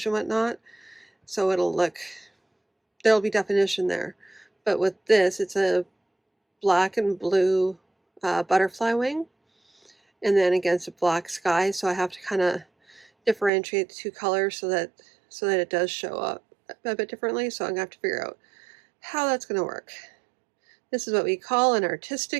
and whatnot, so there'll be definition there. But with this, it's a black and blue butterfly wing, and then against a black sky, so I have to kind of differentiate the two colors so that it does show up a bit differently. So I'm gonna have to figure out how that's going to work. This is what we call an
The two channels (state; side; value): drops out; left; at 13.5 s